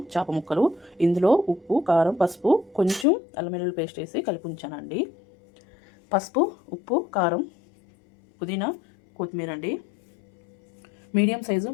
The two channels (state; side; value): drops out; right; at 3.1 s